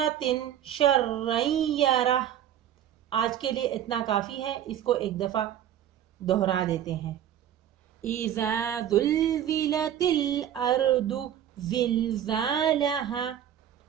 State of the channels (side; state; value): left; quieter; 10.6 dB